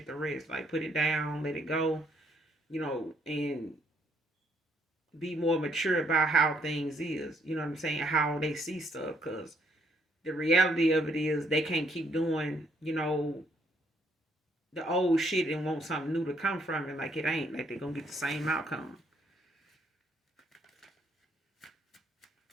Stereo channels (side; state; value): both; normal; correlation 0.70